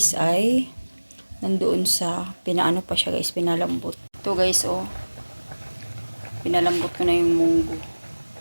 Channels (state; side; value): inverted; both; correlation -1.00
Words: ay nandoon sa pinaano pa siya guys, pinalambot. Ito guys oh. Pinalambot ko na yung munggo.